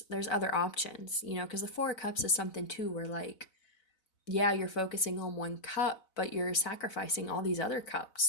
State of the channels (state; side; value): late; right; 4.0 ms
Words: other options, you know, because the Four of Cups is something too where, like, yeah, you're focusing on one cup, but you're sacrificing all these other